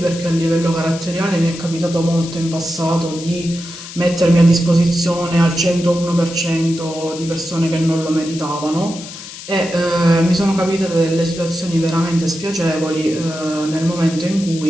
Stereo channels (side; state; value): left; noise; hiss, 13 dB below the sound